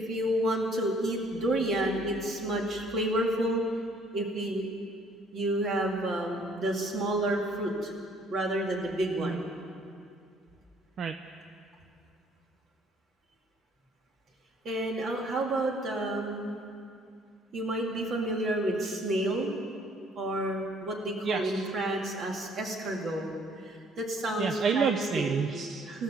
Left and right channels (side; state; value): both; normal; correlation 0.61